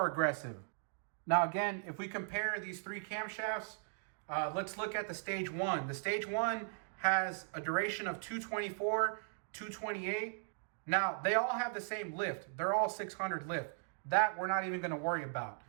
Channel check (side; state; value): left; silent; digital silence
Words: aggressive. Now again, if we compare these 3 camshafts, let's look at the stage 1. The stage 1 has a duration of 224, 228. Now, they all have the same lift. They're all 600 lift. That we're not even going to worry about.